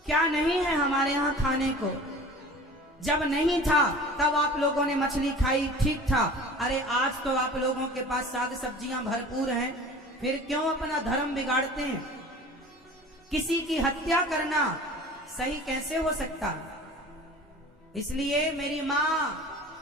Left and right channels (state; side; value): normal; both; correlation 0.41